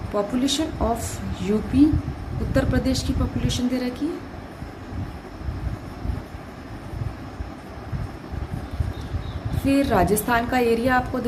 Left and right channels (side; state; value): both; identical; correlation 1.00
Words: Population of UP, Uttar Pradesh की पॉपुलेशन दे रखी है, फिर राजस्थान का एरिया आपको